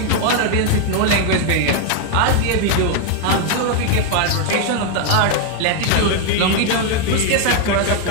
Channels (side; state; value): both; different; correlation 0.00